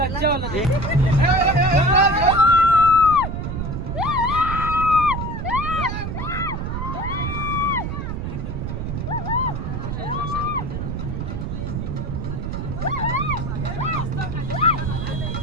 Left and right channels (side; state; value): right; noise; rumble, 4 dB below the sound